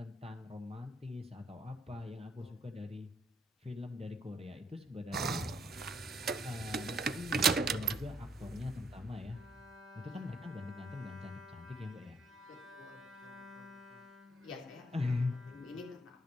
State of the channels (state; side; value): normal; both; correlation 0.70